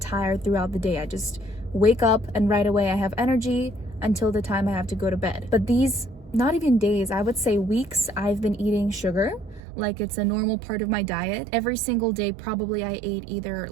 throughout the day. I just wake up and right away I have energy until the time I have to go to bed. But these, not even days, I would say weeks, I've been eating sugar like it's a normal part of my diet. Every single day probably I ate either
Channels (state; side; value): drops out; left; at 9.6 s